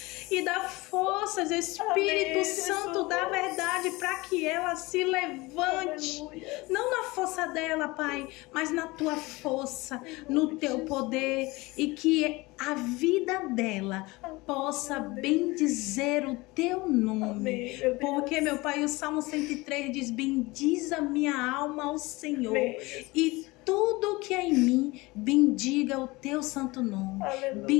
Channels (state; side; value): quieter; right; 22.5 dB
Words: e dá forças, Espírito Santo da verdade, para que ela se levante. Não na força dela, Pai, mas na tua força, no teu poder, e que a vida dela possa bendizer o teu nome. Porque, meu Pai, o Salmo 103 diz: bendiz a minha alma ao Senhor, e tudo que é em mim, bendiga o teu santo nome.